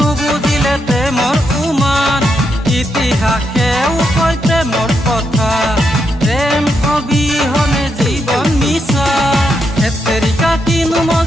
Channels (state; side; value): normal; both; correlation 0.81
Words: নুবুজিলে প্ৰেমৰ উমান ইতিহাসেও কয় প্ৰেমৰ কথা প্ৰেম অবিহনে জীবন মিছা এতেৰিকা কিনু